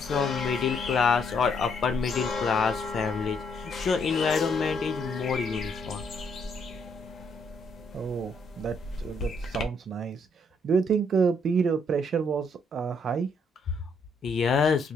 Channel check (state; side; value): normal; both; correlation 0.71